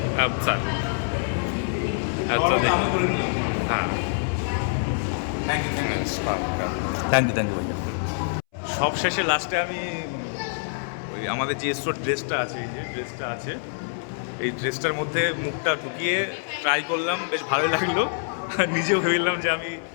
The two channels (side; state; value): right; silent; 61 dB below the other